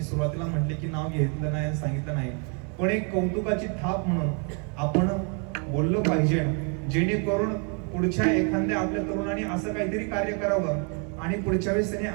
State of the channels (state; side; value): quieter; left; 37.8 dB